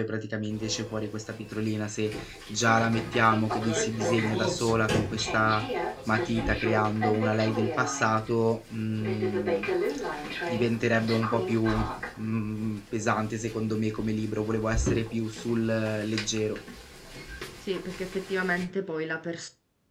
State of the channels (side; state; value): both; identical; correlation 1.00